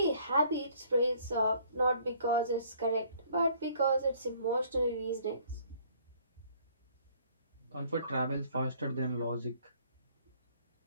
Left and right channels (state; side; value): inverted; both; correlation -0.59